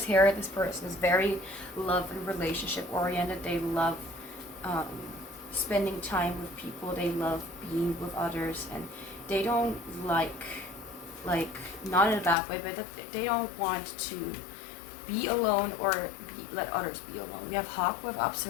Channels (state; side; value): drops out; right; at 12.4 s